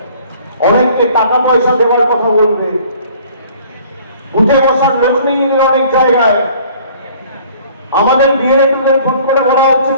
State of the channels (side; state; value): both; inverted; correlation -0.54